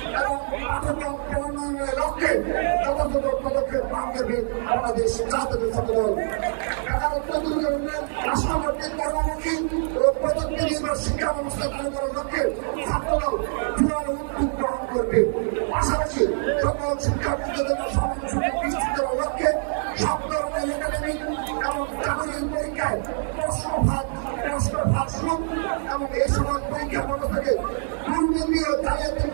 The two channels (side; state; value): left; silent; digital silence